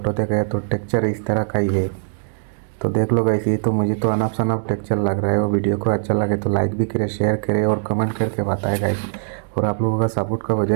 देखा है तो टेक्चर इस तरह का ही है। तो देख लो गाइस, ये तो मुझे तो अनफ शनफ टेक्चर लग रहा है। वो वीडियो को अच्छा लगे तो लाइक भी करें, शेयर करें और कमेंट करके बताएं गाइस। और आप लोगों का सपोर्ट का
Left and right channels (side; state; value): left; silent; digital silence